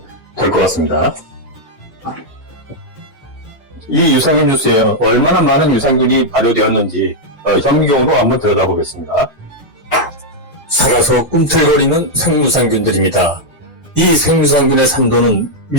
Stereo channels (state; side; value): normal; both; correlation -0.02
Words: 될 것 같습니다. 이 유산균 주스에 얼마나 많은 유산균이 발효되었는지 현미경으로 한번 들여다보겠습니다. 살아서 꿈틀거리는 생유산균들입니다. 이 생유산균의 산도는